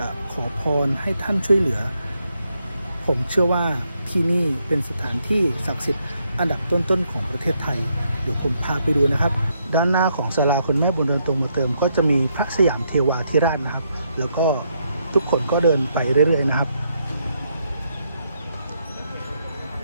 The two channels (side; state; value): both; inverted; correlation -0.77